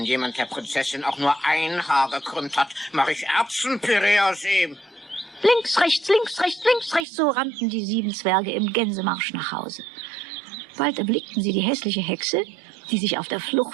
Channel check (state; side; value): drops out; left; at 7.1 s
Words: jemand der Prinzessin auch nur ein Haar gekrümmt hat, mache ich Erbsenpüree aus ihm. Links, rechts, links, rechts, links, rechts, so rannten die 7 Zwerge im Gänsemarsch nach Hause. Bald erblickten sie die hässliche Hexe, die sich auf der